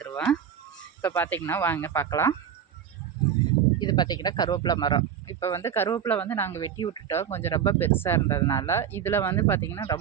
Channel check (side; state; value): left; quieter; 8.6 dB